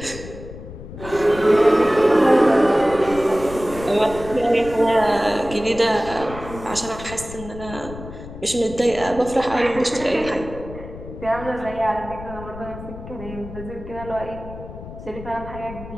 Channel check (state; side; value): noise; left; rumble, 13 dB below the sound